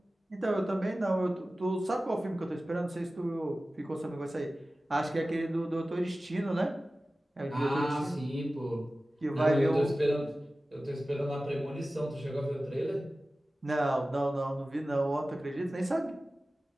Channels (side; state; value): both; normal; correlation 0.96